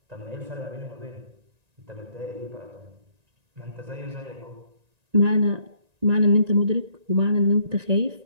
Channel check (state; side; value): late; left; 1.9 ms